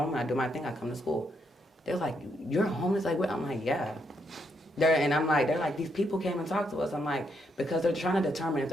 I do my thing, I come to school. They're like, you're homeless? Like, what? I'm like, yeah. They're like, these people came and talked to us. I'm like, because they're trying to determine if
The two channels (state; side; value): normal; both; correlation 0.77